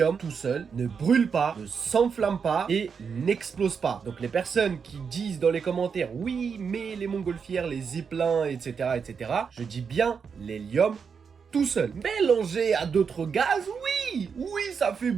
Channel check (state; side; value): quieter; left; 6.1 dB